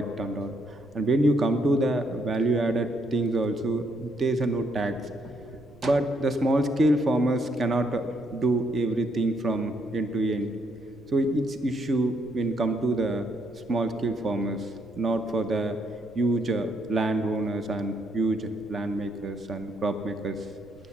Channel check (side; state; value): right; noise; rumble, 25 dB below the sound